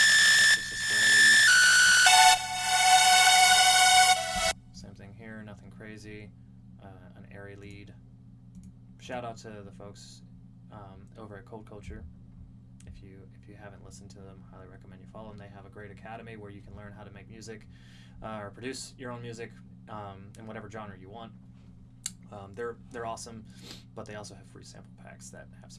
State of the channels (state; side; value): identical; both; correlation 1.00